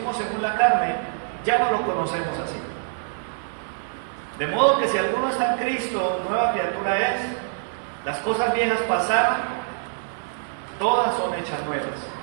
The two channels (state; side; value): silent; left; 56 dB below the other